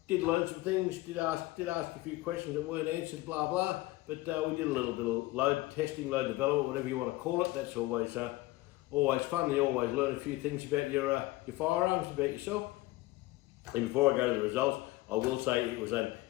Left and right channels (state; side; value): quieter; right; 19.1 dB